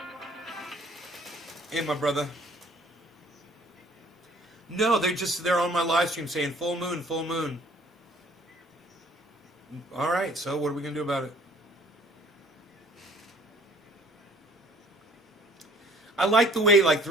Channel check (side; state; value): both; normal; correlation 0.56